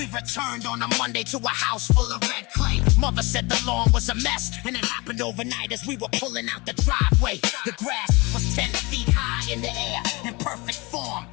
returned on a Monday to a house full of red clay. Mother said the lawn was a mess, and it happened overnight as we were pulling out the driveway. The grass was 10 feet high in the air, in perfect form.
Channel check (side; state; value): right; quieter; 25.5 dB